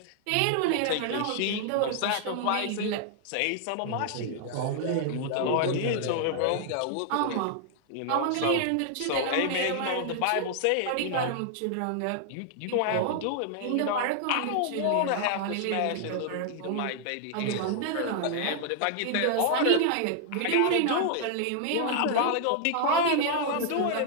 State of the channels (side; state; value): both; different; correlation 0.00